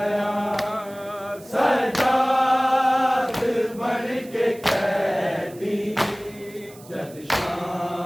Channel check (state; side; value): noise; right; hiss, 22 dB below the sound